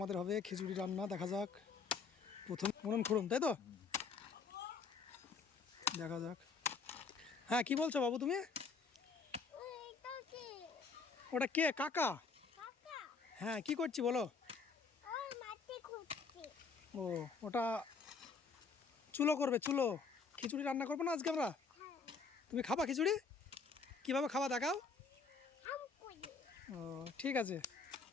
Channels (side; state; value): right; quieter; 4.8 dB